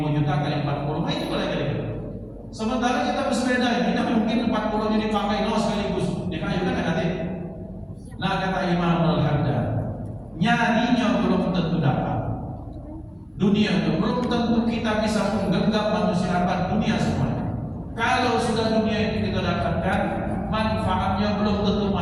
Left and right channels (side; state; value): both; identical; correlation 1.00